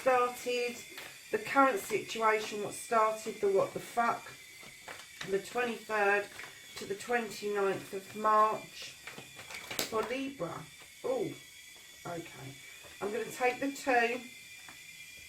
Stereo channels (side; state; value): both; identical; correlation 1.00